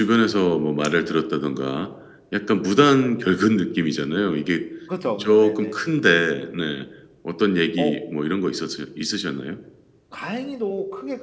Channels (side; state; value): both; identical; correlation 1.00